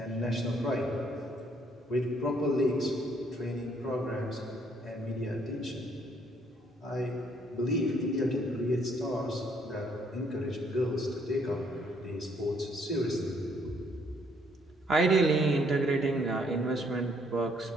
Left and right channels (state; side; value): normal; both; correlation 0.67